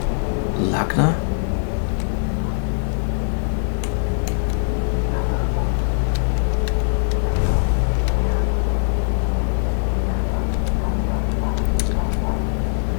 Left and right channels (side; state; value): right; silent; digital silence